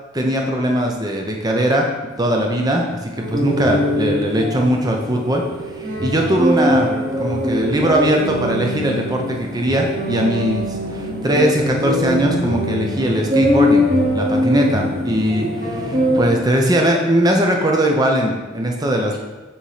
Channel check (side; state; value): both; normal; correlation 0.62